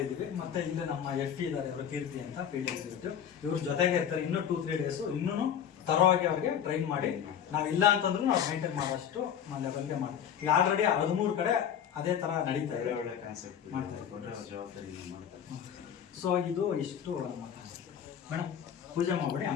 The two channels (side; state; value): right; quieter; 8.8 dB